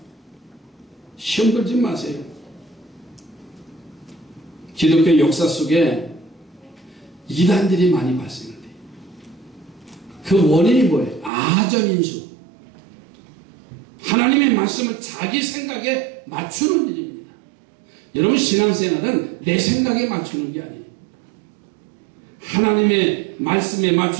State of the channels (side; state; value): left; drops out; at 11.3 s